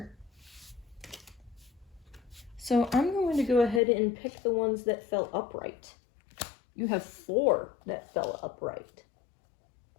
So I'm going to go ahead and pick the ones that fell upright. You have 4 that fell upright.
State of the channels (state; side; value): drops out; right; at 3.8 s